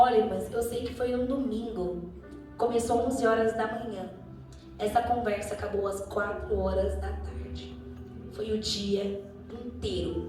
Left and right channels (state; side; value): identical; both; correlation 1.00